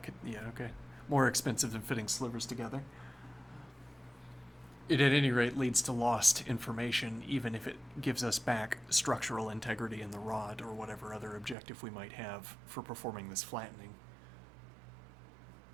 could... yeah, okay. More expensive than fitting slivers together. It at any rate leads to lost information, even if it gives us back structural integrity in the rod or whatever other objective we might have for performing this flattening.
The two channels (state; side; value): drops out; left; at 11.6 s